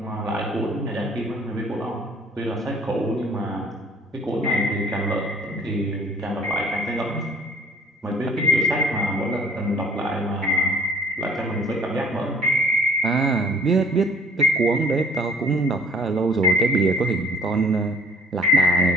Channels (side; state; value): both; normal; correlation 0.55